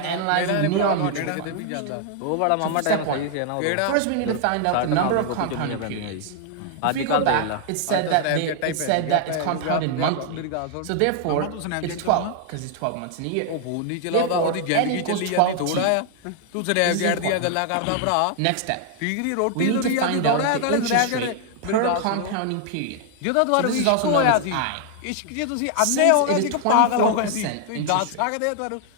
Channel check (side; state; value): both; different; correlation 0.00